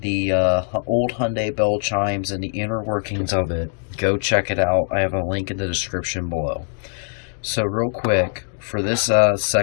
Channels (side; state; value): right; silent; 56 dB below the other